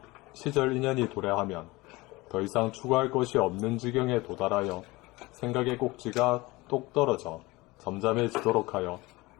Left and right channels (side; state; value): right; quieter; 21.7 dB